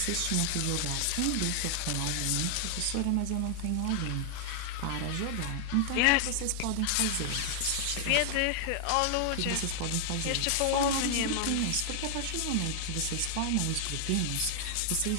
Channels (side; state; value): both; different; correlation 0.00